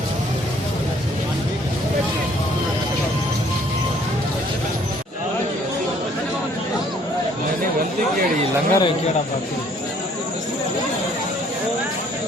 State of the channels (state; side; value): normal; both; correlation 0.61